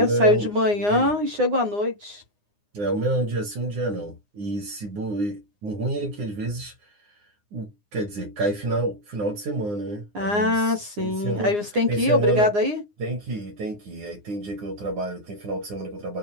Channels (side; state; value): left; late; 9.7 ms